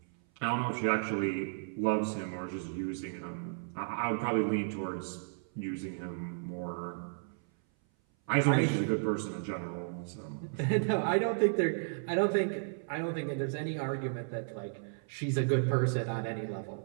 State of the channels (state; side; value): silent; left; 55 dB below the other